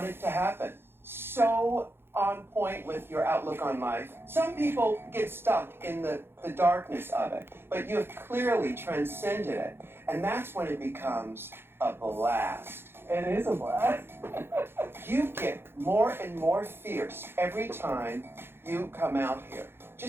to happen. So on point with your outlook on life. Some people get stuck in the darkness of it, but you have clearly transcended it. And that's when it becomes a blast. It is a blast. You get more and more fierce every time you come out here.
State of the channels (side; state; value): left; late; 0.11 ms